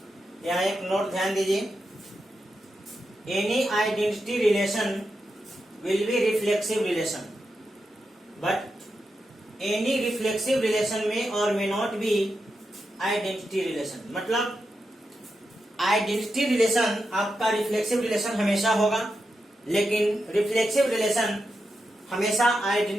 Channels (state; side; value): normal; both; correlation 0.87